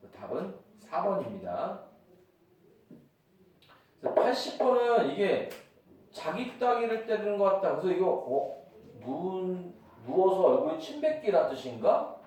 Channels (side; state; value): both; identical; correlation 1.00